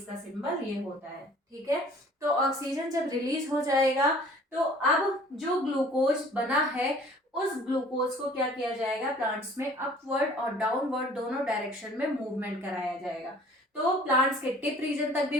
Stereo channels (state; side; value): normal; both; correlation 0.51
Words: का सिंबल ये होता है। ठीक है, तो ऑक्सीजन जब रिलीज हो जाएगा तो अब जो ग्लूकोज बना है उस ग्लूकोज को क्या किया जाएगा, प्लांट्स में अपवर्ड और डाउनवर्ड दोनों डायरेक्शन में मूवमेंट कराया जाएगा। तो प्लांट्स के टिप रीजन तक भी